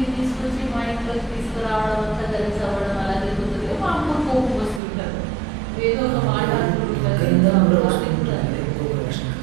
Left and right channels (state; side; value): drops out; left; at 4.8 s